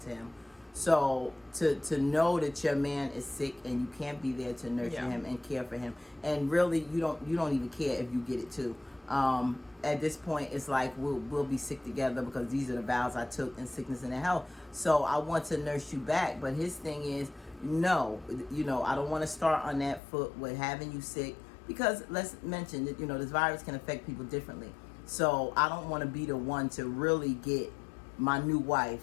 him. So to know that your man is sick and you can't be there to nurture him and care for him, and really you don't even care if you get it too. At this point, it's like we'll be sick together because these are the vows I took in sickness and in health. So I want to nurse you back, but his thing is no, I don't want to start on that foot with having you sick. Because let's mention that, this virus can affect people differently. So I don't want to be the one to really get my new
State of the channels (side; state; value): right; drops out; at 20.0 s